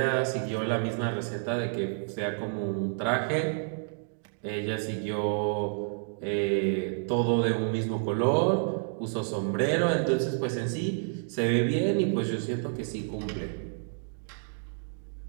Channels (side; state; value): left; silent; digital silence